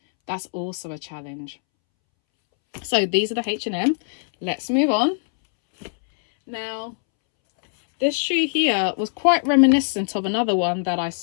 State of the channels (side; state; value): right; silent; 64 dB below the other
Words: that's also a challenge. So these are the H&M. Let's move on. Now, this shoe here was quite reminiscent of another one that I